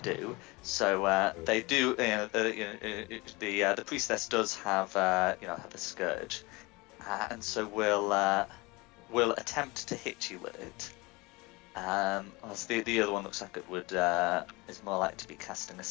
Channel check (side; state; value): right; quieter; 24.4 dB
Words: So they do, the priestess does have, have a scourge, and so will attempt to hit you with it. Whilst the other one looks like it would is more likely to be casting a